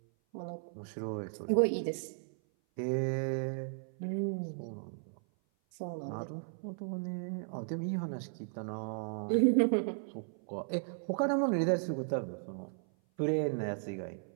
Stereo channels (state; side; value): silent; left; 54 dB below the other